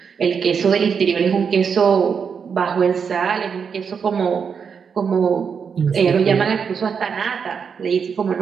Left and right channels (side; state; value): left; quieter; 6.4 dB